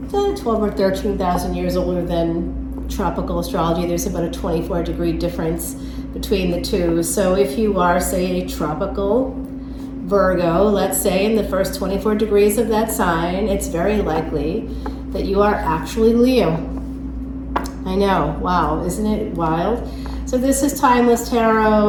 12 or 13,000 years older than tropical astrology. There's about a 24-degree difference between the two. So if you are, say, a tropical Virgo, let's say, in the first 24 degrees of that sign, it's very likely that you are actually Leo. I know, wow, isn't it wild? So this is Timeless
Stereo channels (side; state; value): both; identical; correlation 1.00